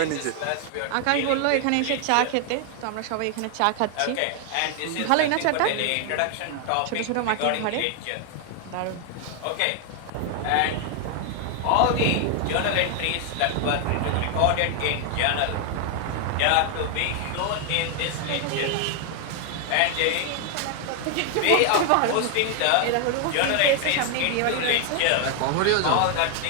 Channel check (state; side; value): different; both; correlation 0.00